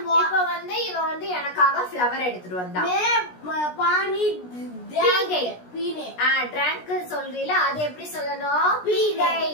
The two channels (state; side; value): late; right; 16 ms